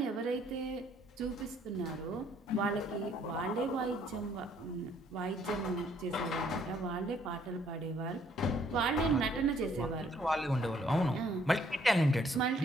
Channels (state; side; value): normal; both; correlation 0.65